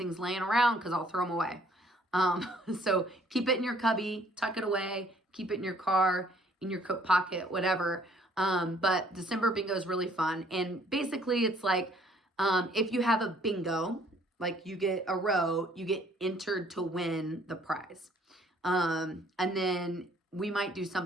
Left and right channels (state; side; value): normal; both; correlation 0.61